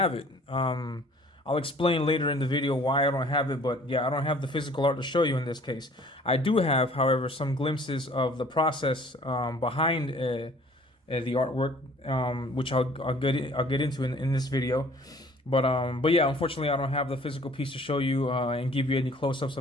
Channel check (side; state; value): both; normal; correlation 0.53